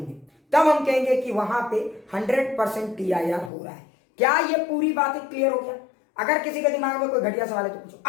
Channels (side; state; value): right; drops out; at 3.5 s